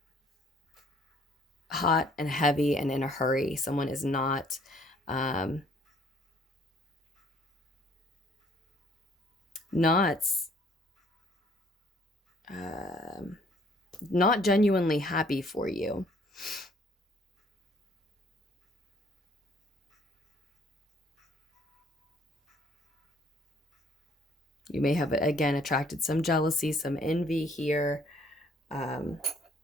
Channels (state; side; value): normal; both; correlation 0.61